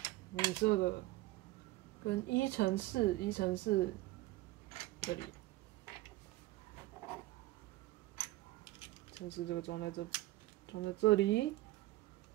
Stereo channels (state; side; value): quieter; left; 18.0 dB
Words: 米色的，跟1×4这里，1×4这个装在这里，